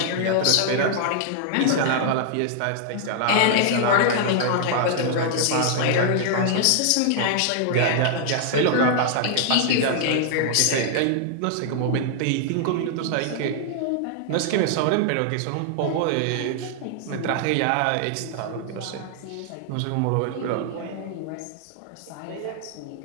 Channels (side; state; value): both; different; correlation -0.01